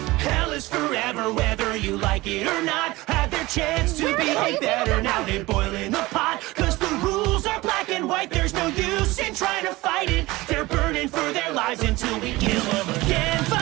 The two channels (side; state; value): left; quieter; 20.2 dB